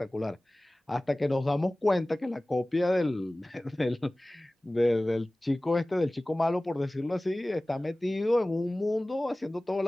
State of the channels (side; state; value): both; normal; correlation 0.98